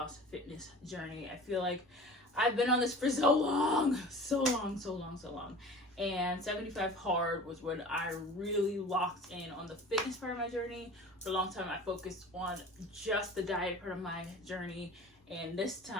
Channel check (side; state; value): both; normal; correlation 0.41